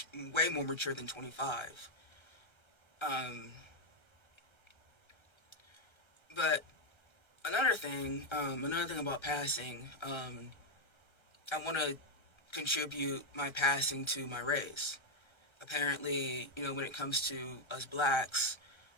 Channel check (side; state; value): right; late; 1.3 ms